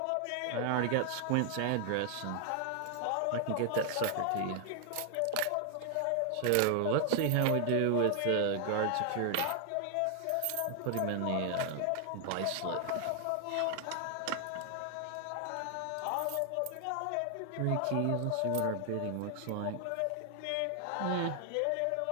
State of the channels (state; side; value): different; both; correlation 0.00